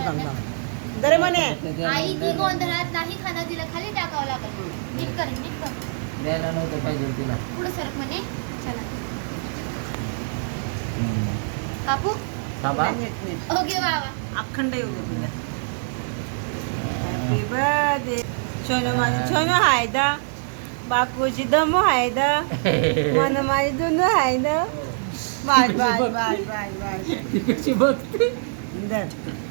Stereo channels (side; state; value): left; silent; digital silence